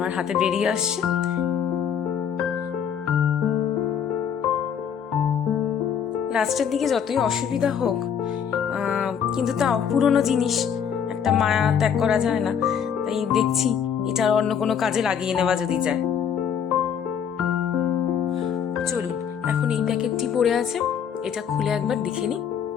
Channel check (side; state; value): right; quieter; 7.9 dB